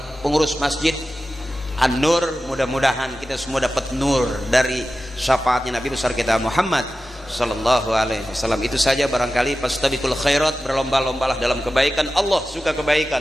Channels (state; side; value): normal; both; correlation 0.94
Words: pengurus masjid An-Nur. Mudah-mudahan kita semua dapat nur dari syafaatnya Nabi besar kita Muhammad sallallahu alaihi wasallam. Itu saja barangkali. Fastabiqul khairat, berlomba-lombalah dalam kebaikan. Allah suka kebaikan,